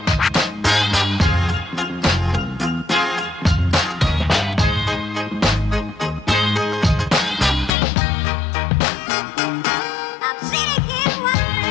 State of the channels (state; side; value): drops out; right; at 7.7 s